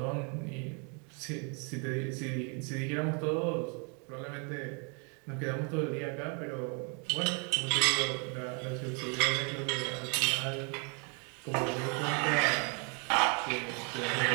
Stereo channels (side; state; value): left; quieter; 36.3 dB